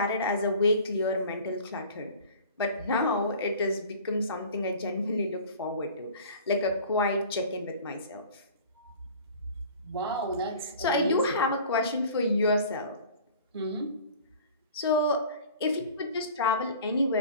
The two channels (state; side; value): inverted; both; correlation -0.44